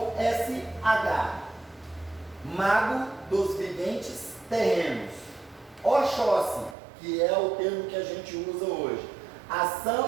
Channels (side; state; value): left; drops out; at 6.8 s